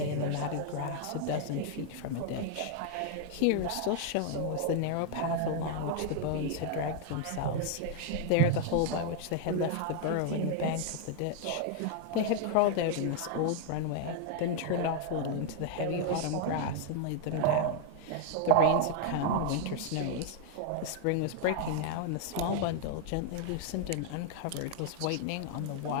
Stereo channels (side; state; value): both; different; correlation 0.00